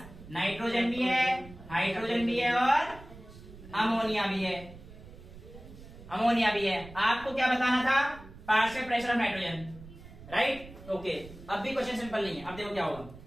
नाइट्रोजन भी है, हाइड्रोजन भी है और अमोनिया भी है। अमोनिया भी है। आपको क्या बताना था? Partial pressure of nitrogen, right? Okay, अब भी क्वेश्चन सिंपल नहीं है। अब देखो क्या होगा।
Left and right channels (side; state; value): right; noise; rumble, 17 dB below the sound